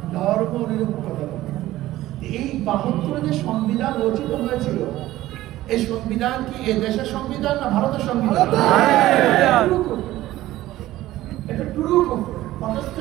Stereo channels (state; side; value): quieter; left; 15.6 dB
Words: ধর্ম নিরপেক্ষতা। এই 72 যে সংবিধান রচিত হয়েছিল, এই সংবিধান কি এ দেশের সংবিধান না ভারতের সংবিধান? এটা টুরু